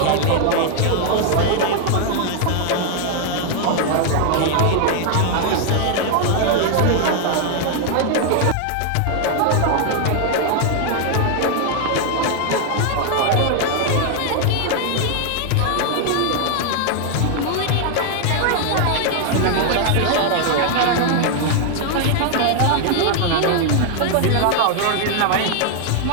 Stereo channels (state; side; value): different; both; correlation 0.00